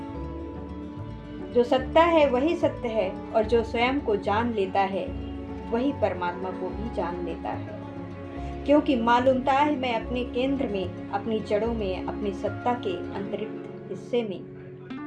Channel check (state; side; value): identical; both; correlation 1.00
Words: जो सत्ता है वही सत्य है। और जो स्वयं को जान लेता है वही परमात्मा को भी जान लेता है। क्योंकि मालूमता है मैं अपने केंद्र में, अपनी जड़ों में, अपनी सत्ता के अंतरिक्त हिस्से